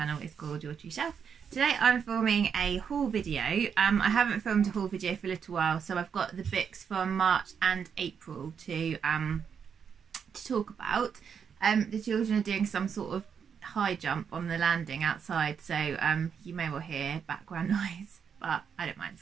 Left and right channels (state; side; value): quieter; left; 7.1 dB